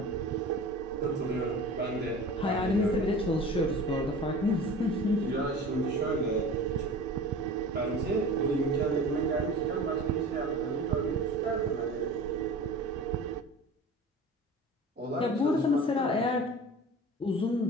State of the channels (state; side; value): normal; both; correlation 0.38